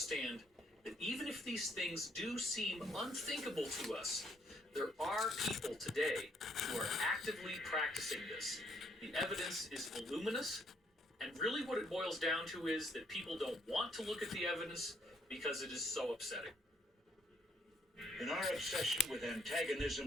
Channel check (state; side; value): normal; both; correlation 0.69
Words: that even if these things do seem unthinkable to us, there are people today who are actively practicing this. The evidence is voluminous, and really what it boils down to is that people don't want to look at the evidence because it is so upsetting. In our obsession with